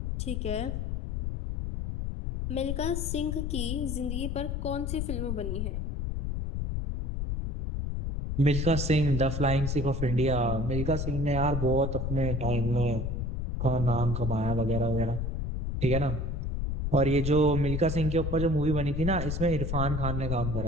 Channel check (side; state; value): left; noise; rumble, 2 dB below the sound